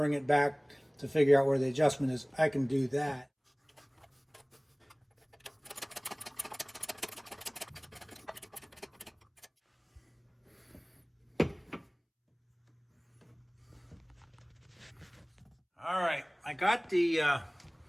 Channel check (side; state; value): both; identical; correlation 1.00